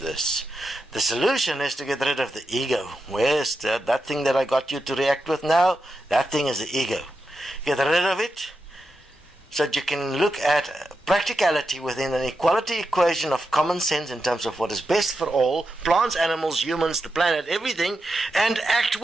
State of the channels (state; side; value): normal; both; correlation 0.88